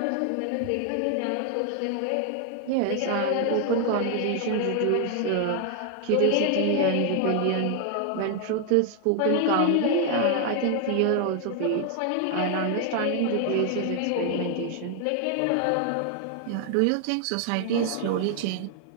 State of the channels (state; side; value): different; both; correlation 0.00